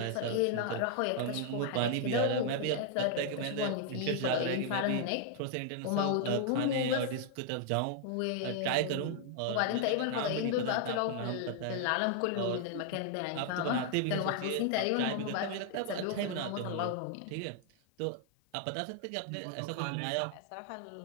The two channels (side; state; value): both; different; correlation 0.00